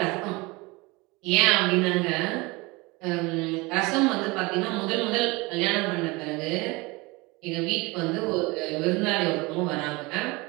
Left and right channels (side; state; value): left; quieter; 24.5 dB